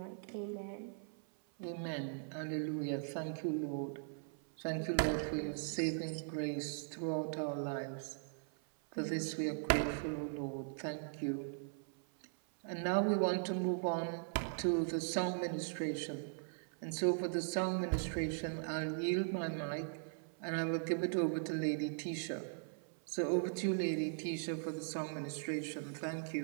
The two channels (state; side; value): silent; left; 51 dB below the other